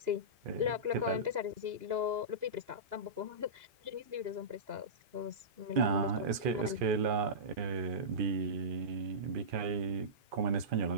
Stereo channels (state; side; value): late; left; 2.4 ms